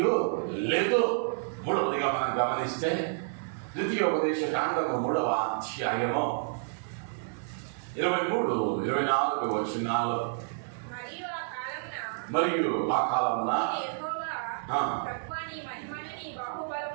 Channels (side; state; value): left; silent; digital silence